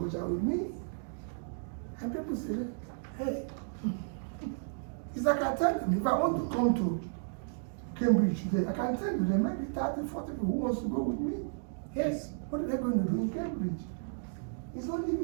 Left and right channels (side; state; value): left; silent; digital silence